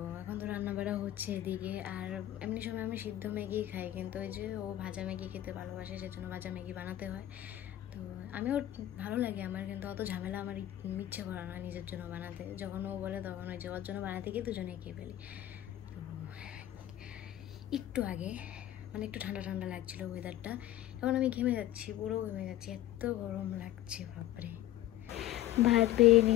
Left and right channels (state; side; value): quieter; right; 13.6 dB